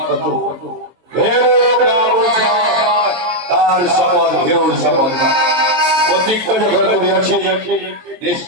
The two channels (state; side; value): late; left; 23 ms